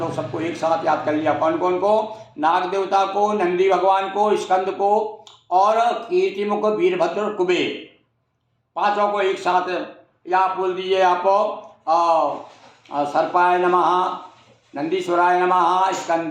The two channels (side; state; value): both; identical; correlation 1.00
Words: सबको एक साथ याद कर लिया। कौन कौन को? नाग देवता को, नंदी भगवान को, स्कंद को और कीर्तिमुख वीरभद्र और कुबेर, पांचों को एक साथ या आप बोल दीजिए। आप सर्पाय नमः, नंदीश्वराय नमः,